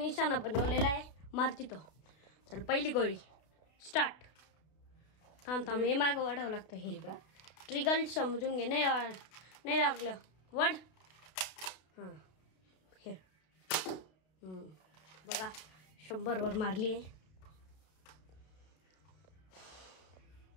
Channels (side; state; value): right; late; 32 ms